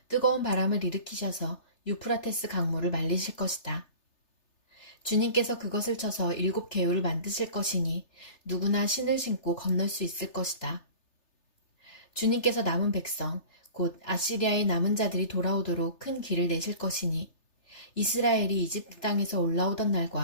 뜨거운 바람을 일으키셔서 유프라테스 강물을 말리실 것이다. 주님께서 그것을 쳐서 7 개울을 만드실 것이니 누구나 신을 신고 건널 수 있을 것이다. 주님께서 남은 백성, 곧 아시리아의 남은 자들이 돌아오도록 큰 길을 내실 것이니 이스라엘이 이집트 땅에서 올라오던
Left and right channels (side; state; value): right; late; 3.3 ms